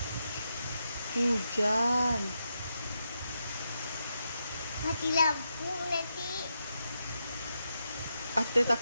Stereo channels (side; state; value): both; inverted; correlation -0.85